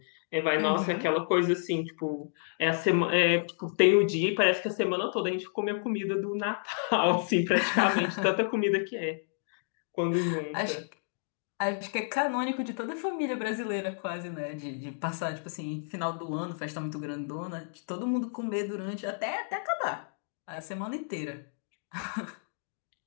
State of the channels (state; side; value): silent; right; digital silence